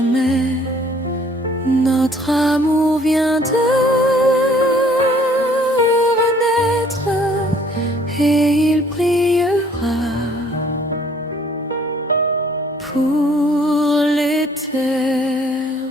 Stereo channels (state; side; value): normal; both; correlation 0.59